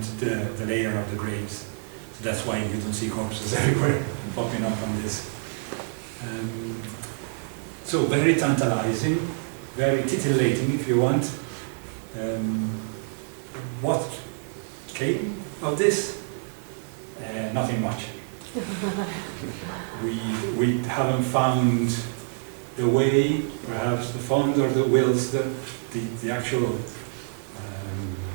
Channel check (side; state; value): left; silent; 57 dB below the other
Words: the layer of the graves. So that's why you don't see corpses everywhere popping up on this. So very tantalizing, very titillating if you want. What came of this? Nothing much. We haven't found the way, perhaps the funds or the wills, the actual,